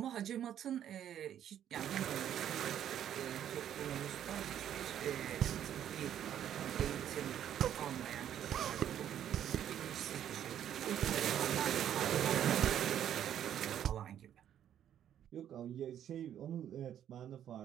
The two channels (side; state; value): left; quieter; 10.3 dB